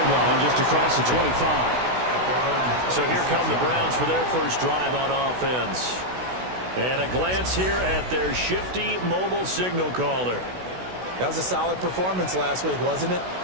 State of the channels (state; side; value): late; left; 16 ms